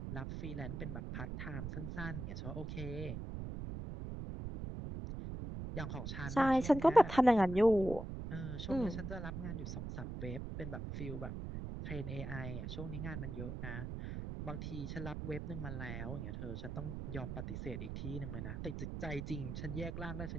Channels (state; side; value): noise; right; rumble, 6 dB below the sound